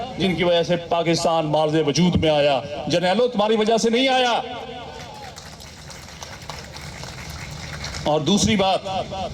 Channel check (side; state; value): both; identical; correlation 1.00